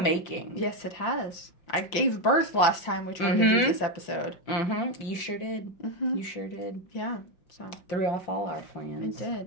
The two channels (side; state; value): right; late; 5.8 ms